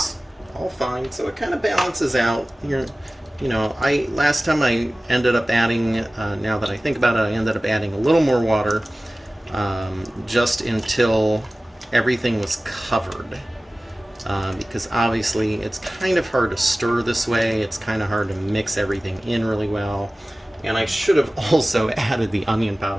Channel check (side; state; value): both; normal; correlation 0.97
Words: all fine. So it kind of balances out. You know, last time I ended up adding, now that I think about it, I ended up adding a little more water just until everything was covered. Because obviously it's kind of hard to stir this way. It's kind of hard to mix everything in really well. And I should have also added the onion